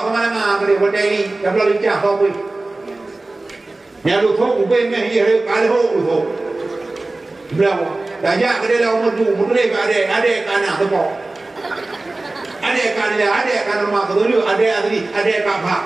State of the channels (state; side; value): quieter; left; 3.0 dB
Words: kemana-mana kerja benda ini, dah boleh lincah kau pun. Ni lu thok ubin meh ye kalau lu thok. Berapa? Dah jak kerja dah umur tu, mudre ada kana tepok. Ada kana rumah kedulu, ada kakak.